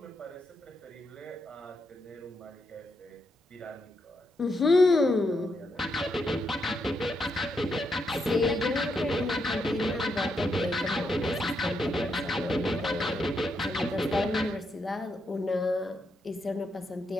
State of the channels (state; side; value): normal; both; correlation 0.81